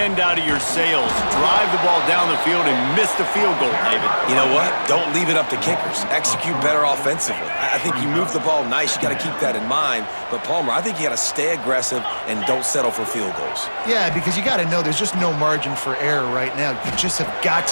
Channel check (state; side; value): inverted; both; correlation -1.00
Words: out of your sails. Drive the ball down the field and miss the field goal, David. You know what? Don't leave it up to kickers. Execute better offensively. I think you move the ball nice. You got to keep that in mind. But, Palmer, I think you got to stay aggressive and don't settle for field goals. Yeah, because you got to know there's just no margin for error right now. You just have got